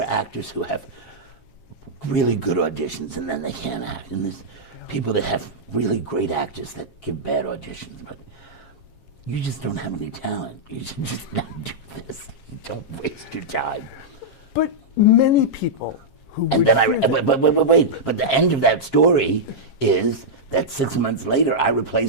actors who have really good auditions and then they can't act. And there's people that have really great actors that give bad auditions. But you just don't have any talent. You should just not do this. You don't waste your time. But many people who... And then wait. But the end of that story is that 6 months later, I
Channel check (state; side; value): late; right; 7.4 ms